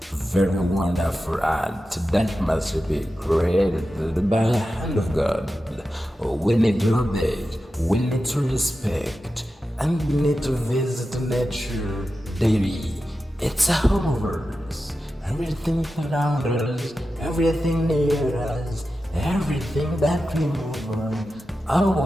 very wonderful art that must be created by the hand of God. We need to obey, we need to respect, and we need to visit nature daily. It's a home of ours. Everything around us, everything near us, everything that we move on,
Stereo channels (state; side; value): normal; both; correlation 0.92